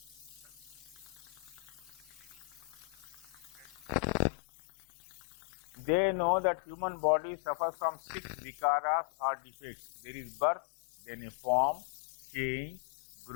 They know that human body suffers from 6 vikaras or defects. There is birth, then a form, change,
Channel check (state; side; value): drops out; right; at 4.2 s